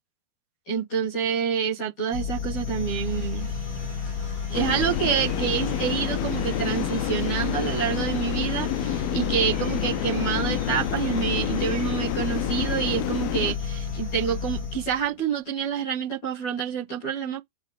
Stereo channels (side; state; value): right; late; 12 ms